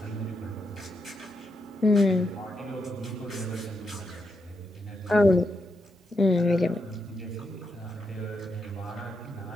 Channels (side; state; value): both; normal; correlation 0.83